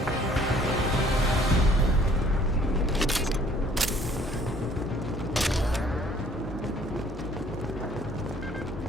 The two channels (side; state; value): both; normal; correlation 0.58